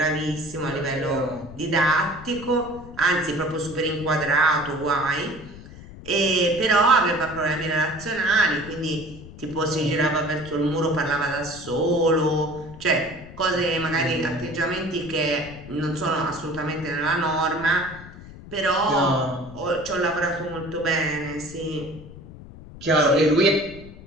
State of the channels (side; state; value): left; noise; rumble, 16 dB below the sound